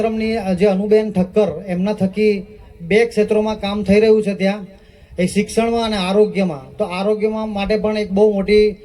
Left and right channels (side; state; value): both; identical; correlation 1.00